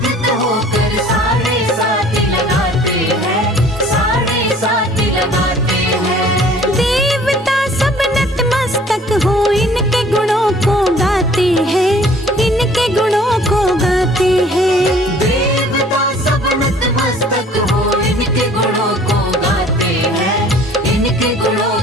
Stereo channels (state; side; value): normal; both; correlation 0.52